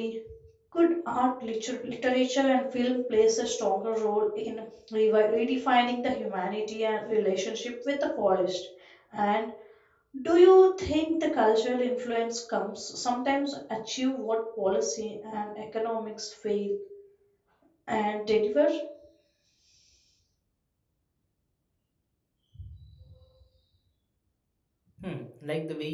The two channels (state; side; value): identical; both; correlation 1.00